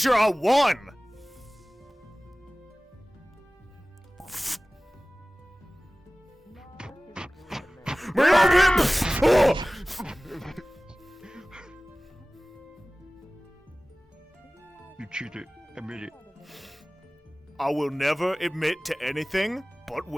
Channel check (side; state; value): both; normal; correlation 0.98